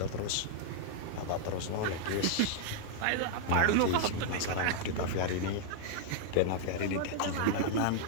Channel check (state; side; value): different; both; correlation -0.01